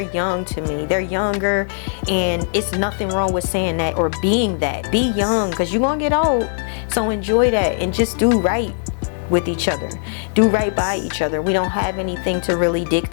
to me. They're younger, and it's nothing wrong with saying that or being that. Be young, because you're going to get old. So enjoy that and just do right with each other. Do right by each other. We don't have anything to really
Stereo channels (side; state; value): right; silent; 62 dB below the other